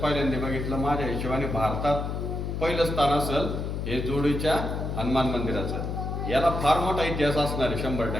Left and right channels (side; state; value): left; noise; hum, 3 dB below the sound